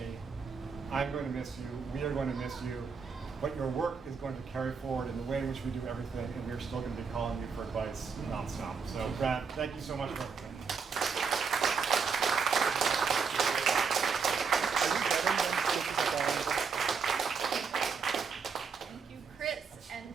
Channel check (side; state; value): left; quieter; 5.7 dB